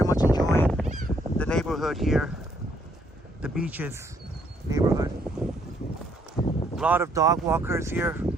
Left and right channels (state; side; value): normal; both; correlation 0.69